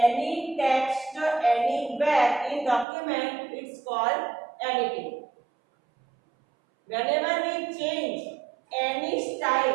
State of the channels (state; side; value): drops out; left; at 2.9 s